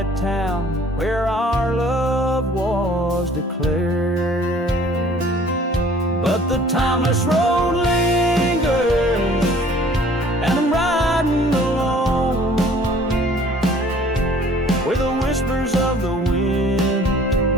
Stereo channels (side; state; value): both; normal; correlation 0.53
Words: town where our love was declared. But the timeless road lingers, and I'm riding alone, where the whispers of the wind